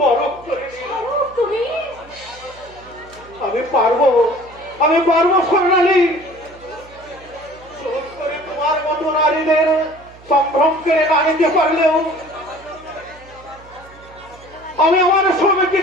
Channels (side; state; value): right; noise; hum, 23 dB below the sound